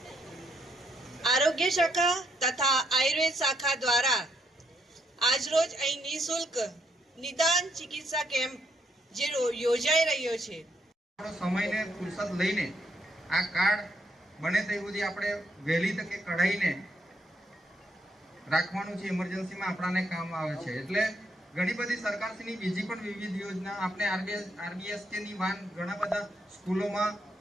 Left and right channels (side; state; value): both; normal; correlation 0.75